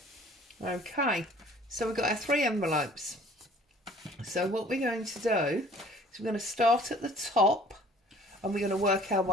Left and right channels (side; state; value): both; normal; correlation 0.53